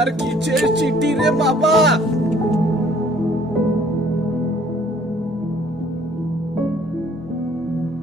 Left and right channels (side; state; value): both; normal; correlation 0.58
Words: কিসের চিঠি রে বাবা?